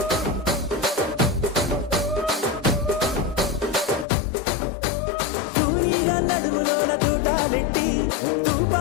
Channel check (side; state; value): right; drops out; at 4.0 s